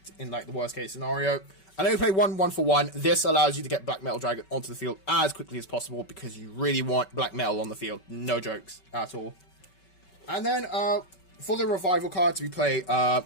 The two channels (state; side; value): late; right; 5.3 ms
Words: in, like, the worst case scenario. I know you play 1/1 for 1. This allows you to get Black Metal Dragon onto the field as quickly as possible, because you really want Black Metal on the field. No jokes at all. And then, for the Revival cards, we play